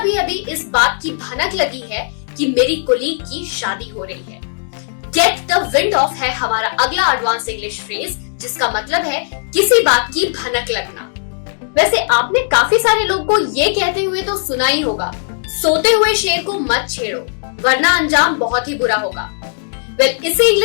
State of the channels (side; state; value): right; silent; digital silence